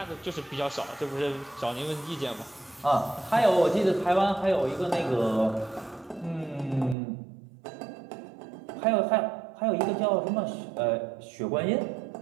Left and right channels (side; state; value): left; drops out; at 7.0 s